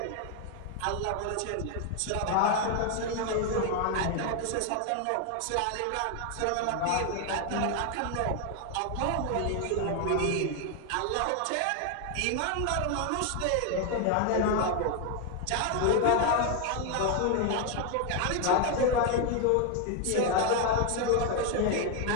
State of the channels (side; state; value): both; different; correlation 0.01